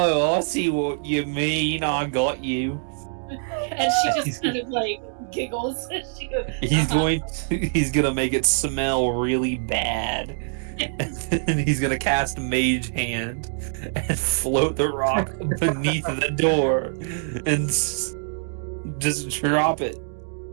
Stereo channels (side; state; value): left; silent; digital silence